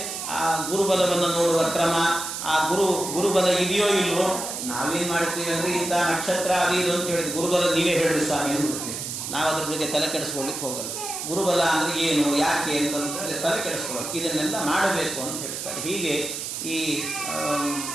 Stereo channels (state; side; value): noise; right; hiss, 5 dB below the sound